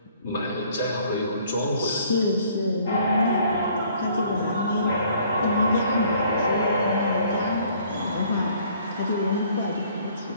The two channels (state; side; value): inverted; both; correlation -0.59